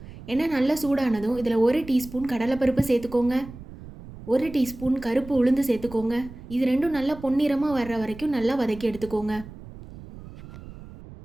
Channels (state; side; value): noise; right; rumble, 16 dB below the sound